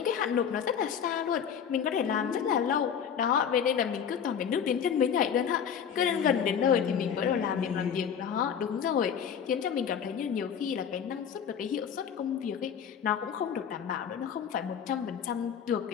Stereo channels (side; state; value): right; quieter; 7.9 dB